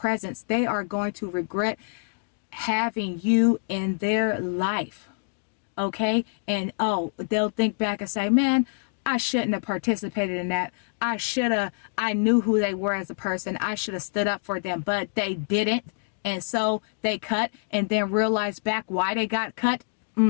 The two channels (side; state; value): right; silent; digital silence